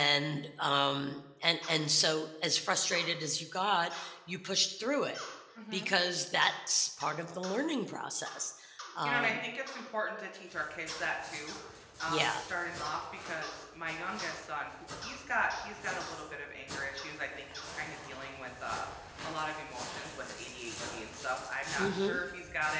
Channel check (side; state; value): both; identical; correlation 1.00